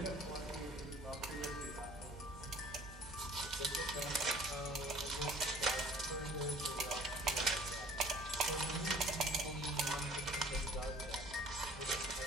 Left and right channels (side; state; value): both; normal; correlation 0.50